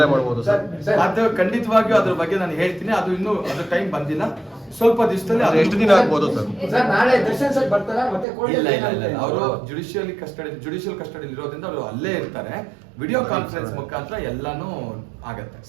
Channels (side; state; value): left; drops out; at 8.2 s